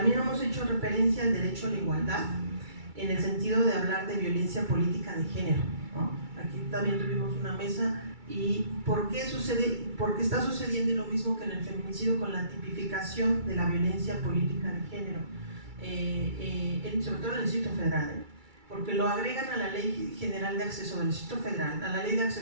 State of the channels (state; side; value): late; left; 2.3 ms